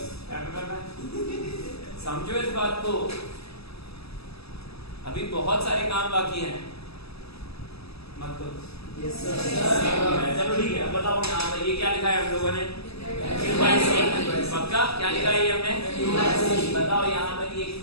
क्या करना है, समझो इस बात को। अभी बहुत सारे काम बाकी हैं, मत करो। चलो ठीक है, अब बताओ यहाँ पर ये क्या लिखा है हम लोगों ने? पक्का क्या लिखा है ये हमने? बताओ यहाँ पर ये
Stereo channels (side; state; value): right; late; 0.78 ms